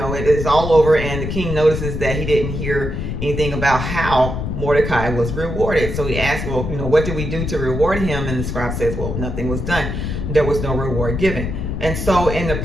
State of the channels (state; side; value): noise; left; rumble, 4 dB below the sound